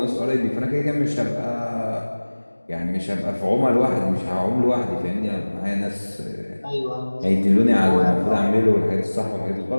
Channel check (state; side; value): inverted; both; correlation -1.00